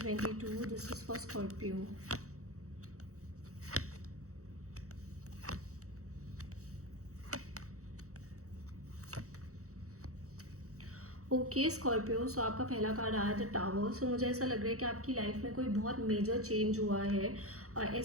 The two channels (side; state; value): left; late; 0.65 ms